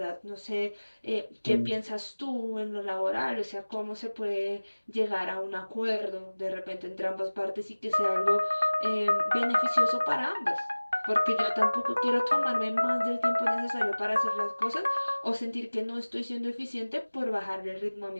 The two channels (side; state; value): both; inverted; correlation -1.00